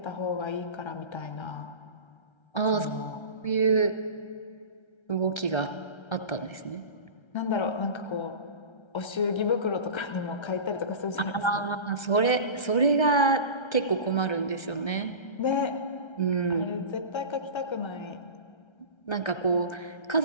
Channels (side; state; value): right; late; 1.3 ms